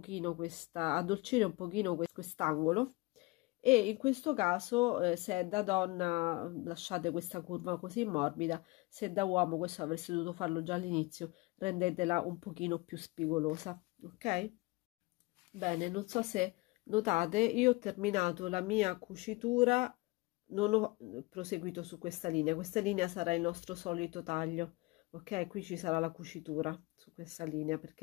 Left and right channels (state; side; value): quieter; right; 23.9 dB